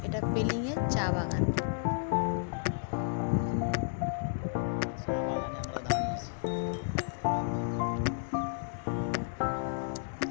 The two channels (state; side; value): silent; right; digital silence